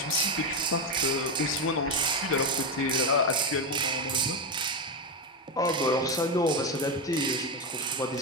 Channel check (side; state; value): both; normal; correlation 0.11